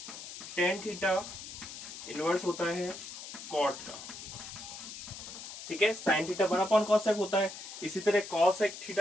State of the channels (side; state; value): left; noise; hiss, 11 dB below the sound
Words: टेन थीटा इनवर्स होता है कॉट का। ठीक है, साइन थीटा 1 कॉसेक होता है। इसी तरह कॉसेक